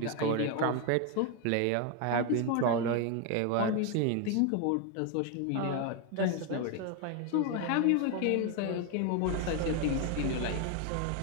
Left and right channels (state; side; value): different; both; correlation 0.01